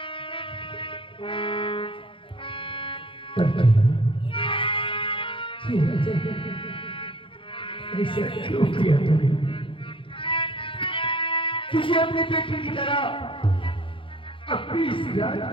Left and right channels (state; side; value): late; right; 0.25 ms